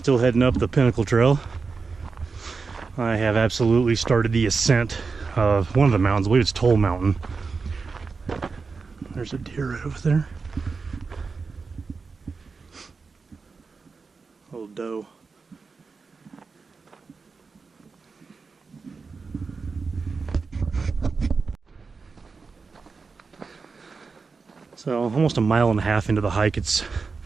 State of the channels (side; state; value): left; quieter; 4.7 dB